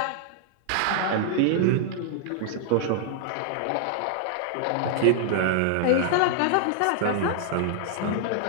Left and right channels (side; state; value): both; different; correlation 0.00